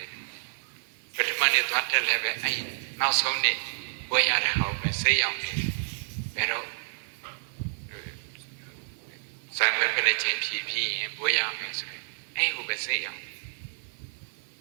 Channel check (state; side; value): silent; left; 58 dB below the other